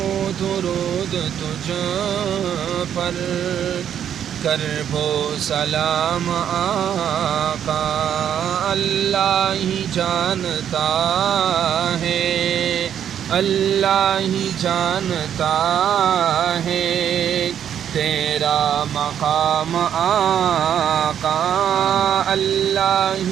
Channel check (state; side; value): quieter; left; 9.3 dB